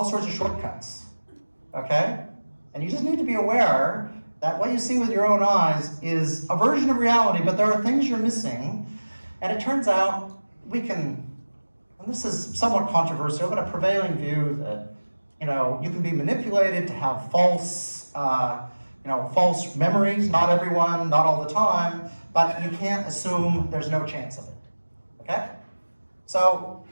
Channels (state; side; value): inverted; both; correlation -1.00